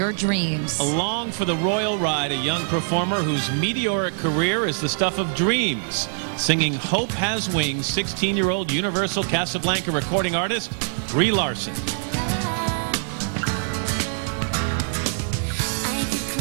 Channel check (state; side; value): silent; left; digital silence